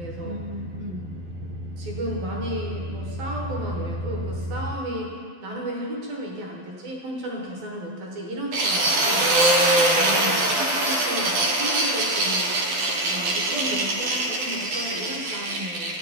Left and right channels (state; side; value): late; left; 12 ms